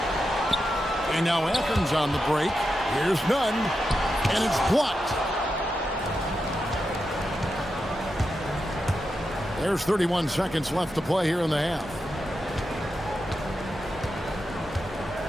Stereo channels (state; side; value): normal; both; correlation 0.88